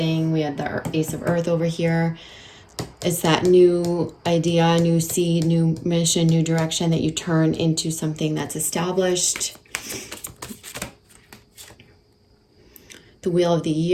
We had the Ace of Earth over here. It's that new idea, new seed, new mission, new direction that you turn into something that's established. The Wheel of the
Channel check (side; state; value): both; identical; correlation 1.00